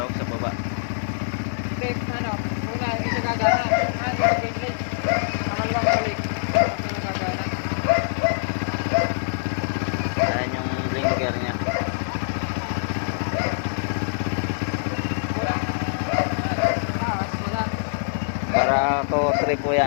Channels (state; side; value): silent; right; digital silence